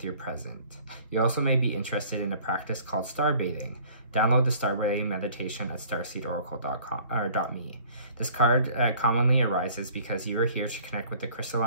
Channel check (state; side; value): inverted; both; correlation -0.53